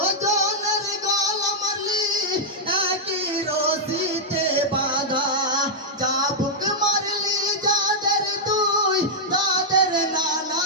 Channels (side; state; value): both; normal; correlation -0.06